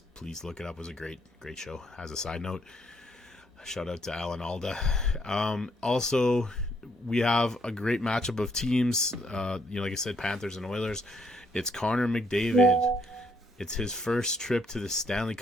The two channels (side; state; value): both; normal; correlation 0.71